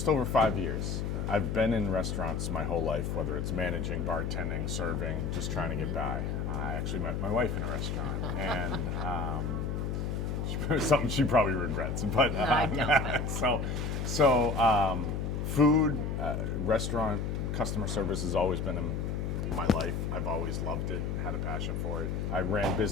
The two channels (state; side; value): noise; left; hum, 1 dB below the sound